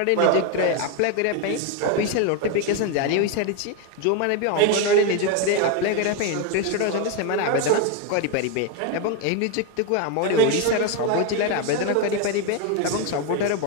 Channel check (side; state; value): both; different; correlation 0.02